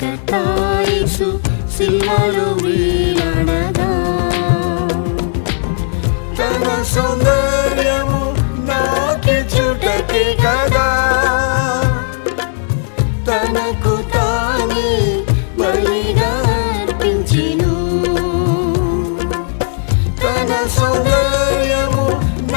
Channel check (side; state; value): right; silent; 68 dB below the other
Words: యేసు శిలువలో వేలాడగా. తన సౌందర్యము నాకిచ్చుటకే కదా, తనకు తానే బలిగా అర్పించెను. తన సౌందర్యము